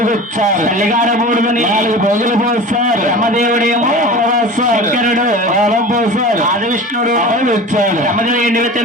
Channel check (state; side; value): normal; both; correlation 0.35